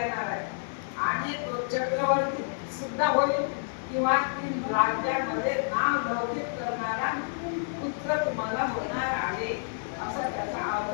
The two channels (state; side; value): silent; right; digital silence